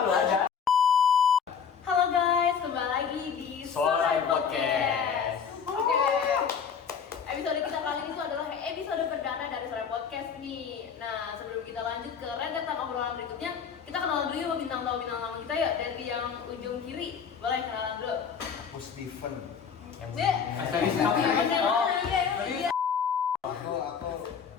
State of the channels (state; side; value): quieter; right; 6.8 dB